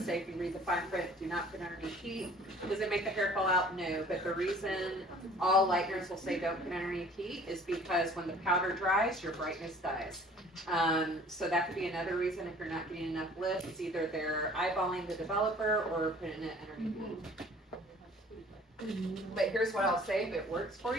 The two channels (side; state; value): both; normal; correlation 0.51